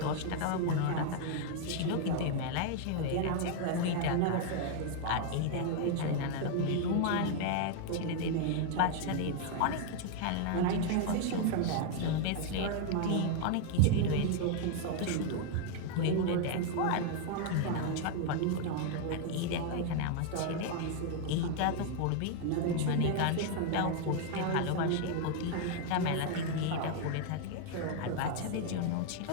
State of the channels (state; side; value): different; both; correlation 0.00